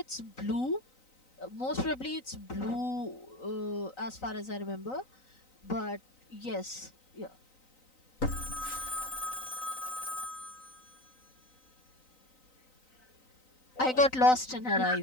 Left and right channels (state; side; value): late; right; 3.9 ms